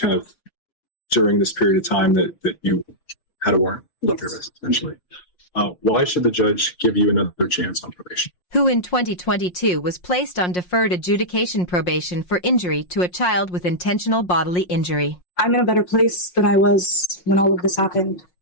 of during this period of time that you had a warrant of Yes. arrest, essentially. Why should the judge give you another chance on probation? Who in 2022 was placed on deferred adjudication probation for injury to a child with intentional bodily injury. I'm in a better place than I was when all of this happened.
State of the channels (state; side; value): late; right; 5.6 ms